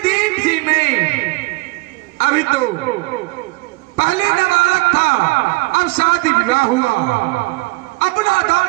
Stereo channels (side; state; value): left; quieter; 25.0 dB